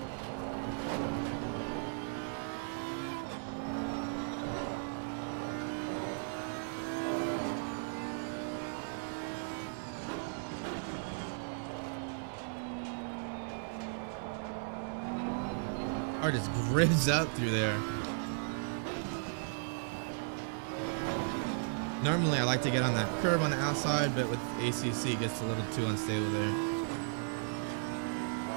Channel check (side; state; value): left; silent; digital silence